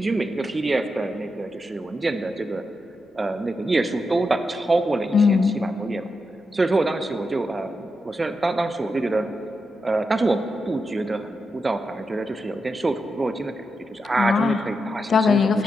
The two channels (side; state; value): both; normal; correlation 0.87